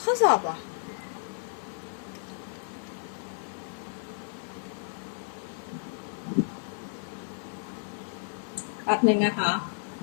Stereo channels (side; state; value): right; silent; digital silence